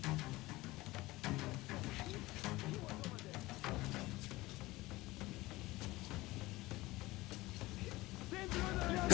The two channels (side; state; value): right; quieter; 19.6 dB